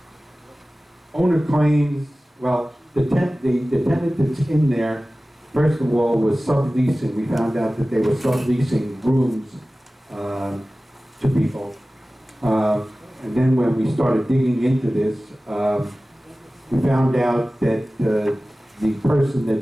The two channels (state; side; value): normal; both; correlation 0.97